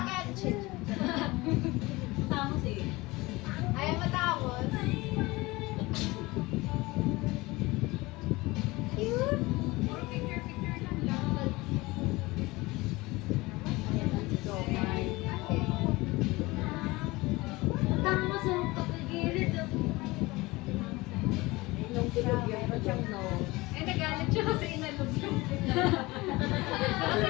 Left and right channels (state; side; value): quieter; right; 21.7 dB